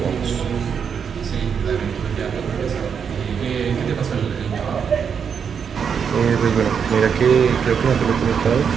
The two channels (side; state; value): left; quieter; 7.0 dB